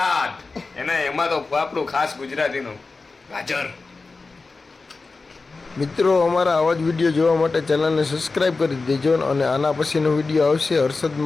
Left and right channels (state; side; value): quieter; right; 3.9 dB